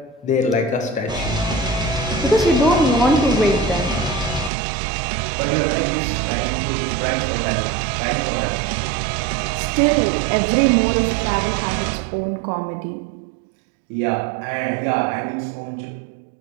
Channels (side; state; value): left; drops out; at 4.5 s